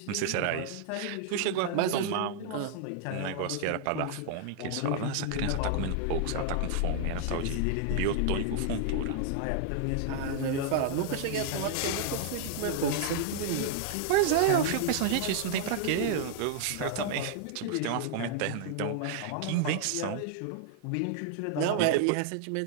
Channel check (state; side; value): different; both; correlation 0.00